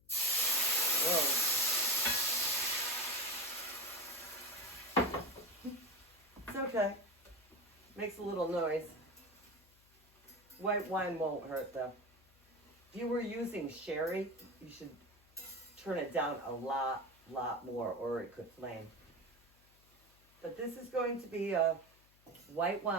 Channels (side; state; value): left; noise; hum, 30 dB below the sound